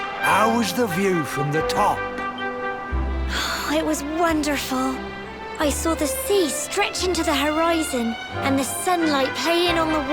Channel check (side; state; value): both; identical; correlation 1.00